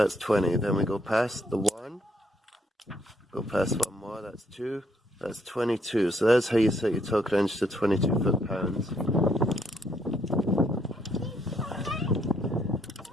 20. Then we go past the 1, go past one more, that's 2, that's 22. So that's how you set your torque wrench to 22 foot-pounds.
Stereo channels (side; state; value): both; normal; correlation 0.71